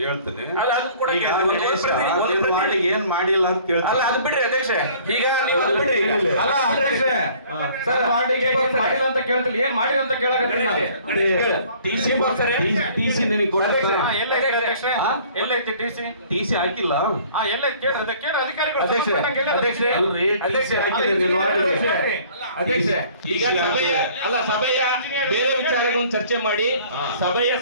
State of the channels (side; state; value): both; inverted; correlation -0.53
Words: ಅದನ್ನ ಕೂಡ ಏನ್ ಮಾಡಿಲ್ಲ ಅಂತ ಕೇಳ್ತೀನಿ. ಅಲ್ಲ, ಅದು ಬಿಡ್ರಿ ಅಧ್ಯಕ್ಷ. ಈಗ ನೀವು ಅದು ಬಿಡ್ರಿ. ಅಲ್ಲ ಅಧ್ಯಕ್ಷ, ಸರ್ ವಾರ್ಡಿಗೆ ಏನ್ ಮಾಡಿಲ್ಲ ಅಂತ ಕೇಳ್ತಿಲ್ಲ, ಏನ್ ಮಾಡಿಲ್ಲ ಅಂತ ಕೇಳಕತ್ತೀನಿ ನಾನು. ಟಿಸಿ ನಿನಗೆ ಎಲ್ಲೈತಿ ಅಧ್ಯಕ್ಷ? ಎಲ್ಲೈತಿ ಟಿಸಿ? ಟಿಸಿ ಹಾಕಿಲ್ಲ. ಎಲ್ಲೈತಿ ಕೇಳ್ರಿ ಅಧಿಕಾರಿಗಳು. ಅಧ್ಯಕ್ಷ, ಈಗ ಸಭೆಯ ಬೇರೆ ವಿಚಾರಗಳನ್ನು ಚರ್ಚೆ ಮಾಡಿ ಸಭೆಯ